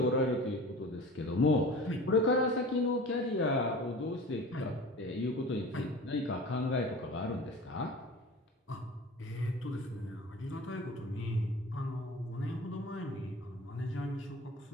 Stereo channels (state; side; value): normal; both; correlation 0.38